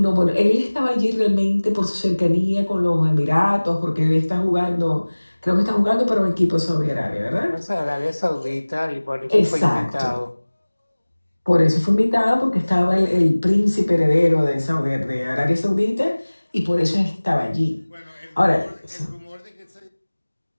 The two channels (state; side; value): inverted; both; correlation -1.00